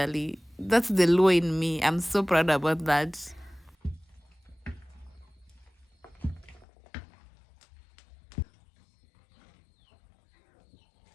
That's the law in me. I'm so proud about that.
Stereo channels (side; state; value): right; drops out; at 6.7 s